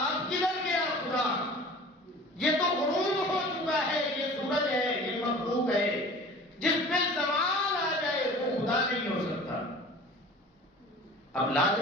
کدھر گیا خدا؟ یہ تو غروب ہو چکا ہے، یہ سورج ہے، یہ مخلوق ہے، جس پہ زوال آ جائے وہ خدا نہیں ہو سکتا۔ اب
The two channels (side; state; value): both; normal; correlation 0.42